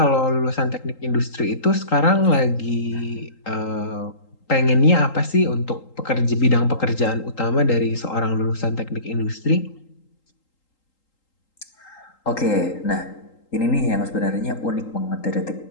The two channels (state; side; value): late; right; 3.8 ms